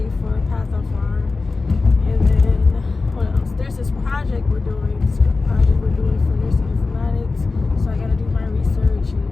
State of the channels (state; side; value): quieter; right; 3.9 dB